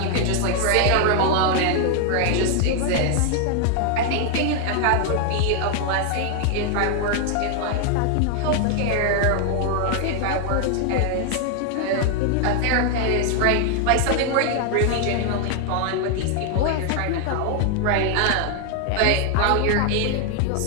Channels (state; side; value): different; both; correlation 0.00